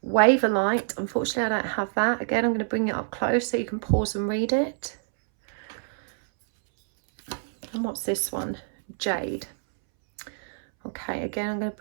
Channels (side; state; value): left; silent; 61 dB below the other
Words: Waverlight, unfortunately I don't have that. Again, I'm going to bring it up close so you can pause and read it. And what's this one? Jade. Okay, again, I'm going to